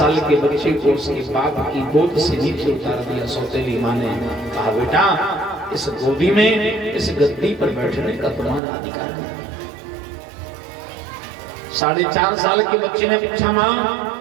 के बच्चे को उसके बाप की गोद से नीचे उतार दिया। सौतेली माँ ने कहा बेटा इस गोदी में, इस गद्दी पर बैठने का तुम्हारा अधिकार नहीं। 4.5 साल के बच्चे ने पूछा माँ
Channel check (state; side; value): drops out; left; at 8.6 s